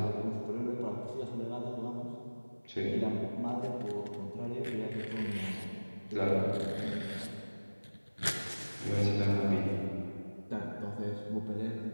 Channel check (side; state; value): both; inverted; correlation -1.00